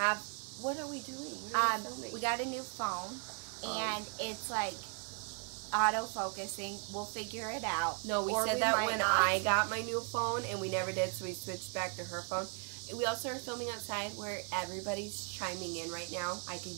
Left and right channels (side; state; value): left; quieter; 37.1 dB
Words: What are we doing? What are we filming? We got a new phone, and it's like auto-focusing. We'll figure it out. No, we said that when I got my new phone, and we never did, so we switched back to her phone. We also are filming outside where everybody's chiming in right now. I can